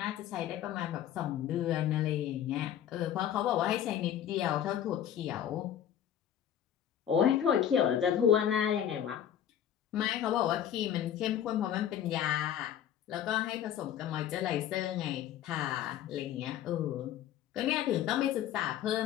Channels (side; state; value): right; quieter; 10.2 dB